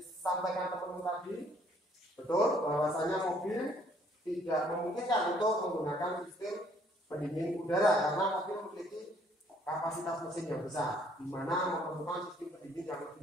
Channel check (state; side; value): normal; both; correlation 0.63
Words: teman-teman tadi, betul bahwasanya mobil tidak memungkinkan untuk menggunakan sistem pendingin udara karena mobil memiliki kapasitas mesin yang besar, di mana memerlukan sistem pendingin yang